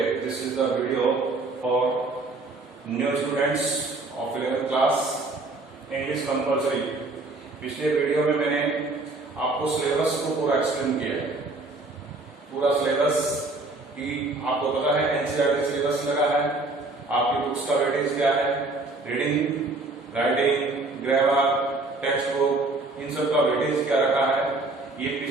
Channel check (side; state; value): left; quieter; 3.2 dB